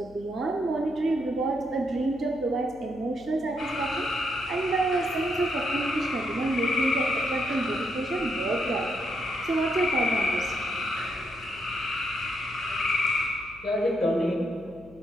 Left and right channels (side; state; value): left; noise; hum, 23 dB below the sound